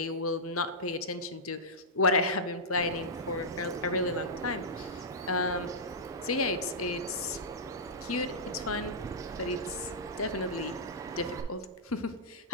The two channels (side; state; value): both; normal; correlation -0.13